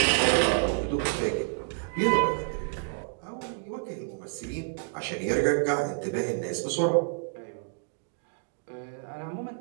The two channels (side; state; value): left; silent; 59 dB below the other